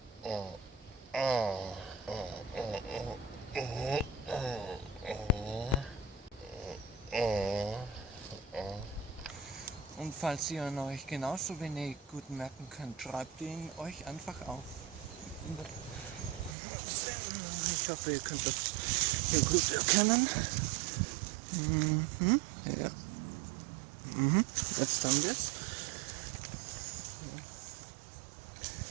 Und falls ihr ihn euch genauso wenig gut merken könnt, schreibt ihn euch einfach auf. Ich hoffe, ihr könnt das hier gut erkennen. Ja. Jetzt haben wir es.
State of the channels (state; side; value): drops out; left; at 16.6 s